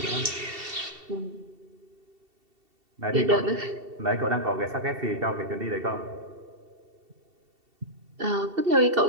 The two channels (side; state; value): left; late; 2.7 ms